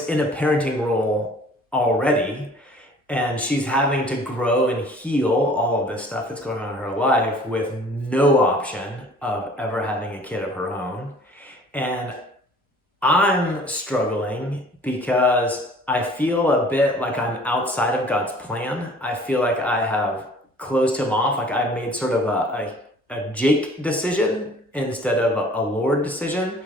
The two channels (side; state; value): both; normal; correlation 0.51